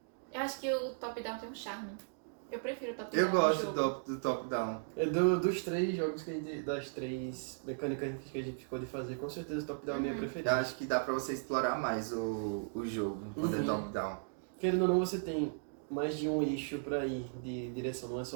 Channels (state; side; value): silent; left; digital silence